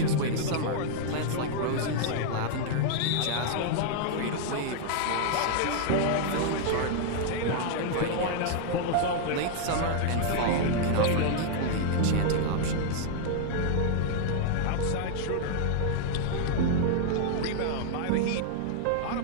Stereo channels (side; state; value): both; different; correlation -0.01